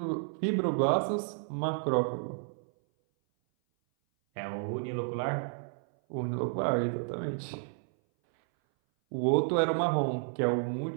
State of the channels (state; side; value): silent; left; 57 dB below the other